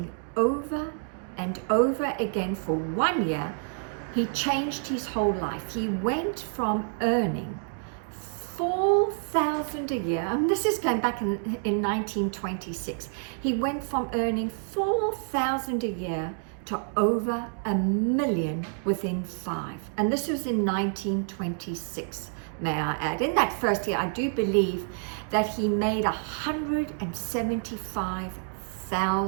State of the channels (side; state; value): left; silent; 59 dB below the other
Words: over and over again for 1 year, he changed his whole life. He went from earning $4,000 a year, and this is going back in 1926. He went from earning $4,000 a year to over $1 million within 5. And this was in 1926, may I add. In that first year, I do believe that he made